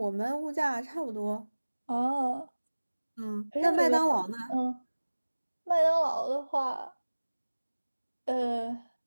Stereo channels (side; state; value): both; inverted; correlation -1.00